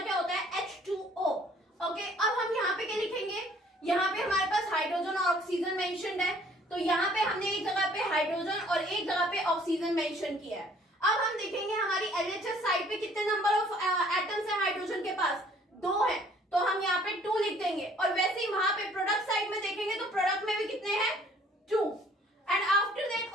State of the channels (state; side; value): normal; both; correlation 0.58